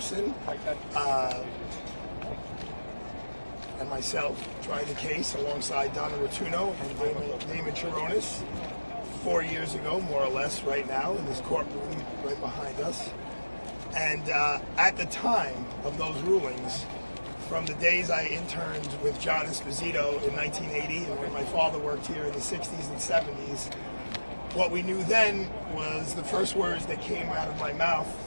and myself tried the case alongside Donna Rotuno and Damon Chironis 4 years ago, more or less, right now in this courtroom right behind us. And at the time of those rulings, from the days I interned with John Esposito in 1980 and when my father worked here in the 60s and 70s, what we knew then was the first words that came out of my mouth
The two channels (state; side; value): inverted; both; correlation -1.00